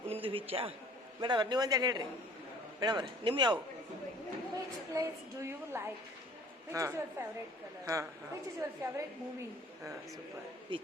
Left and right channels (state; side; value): normal; both; correlation 0.51